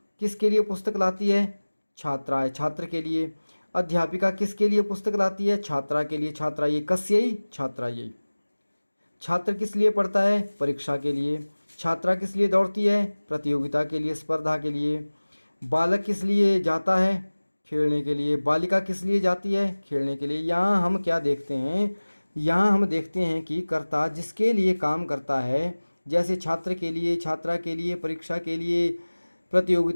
किसके लिए पुस्तक लाती है? छात्राएं, छात्र के लिए। अध्यापिका किसके लिए पुस्तक लाती है? छात्रा के लिए। छात्रा ये कस्यै, छात्रा ये। छात्र किस लिए पढ़ता है? परीक्षा के लिए। छात्रा किस लिए दौड़ती है? प्रतियोगिता के लिए, स्पर्धा के लिए। बालक किस लिए जाता है? खेलने के लिए। बालिका किस लिए जाती है? खेलने के लिए। यहाँ हम क्या देखते हैं? यहाँ हम देखते हैं कि कर्ता जिसके लिए काम करता है, जैसे छात्र के लिए, छात्रा के लिए, परीक्षा के लिए,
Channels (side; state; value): both; inverted; correlation -1.00